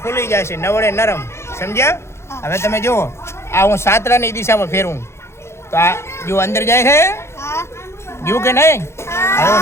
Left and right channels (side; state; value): right; late; 0.13 ms